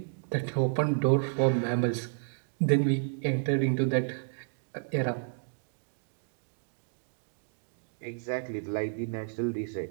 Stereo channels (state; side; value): silent; left; digital silence